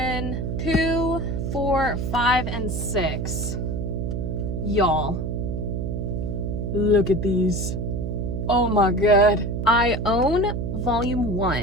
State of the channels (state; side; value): noise; right; hum, 2 dB below the sound